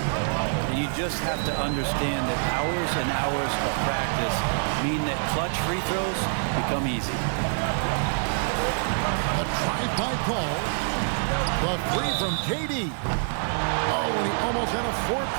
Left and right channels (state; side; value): silent; left; digital silence